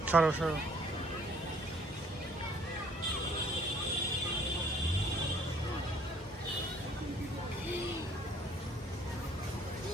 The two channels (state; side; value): normal; both; correlation 0.60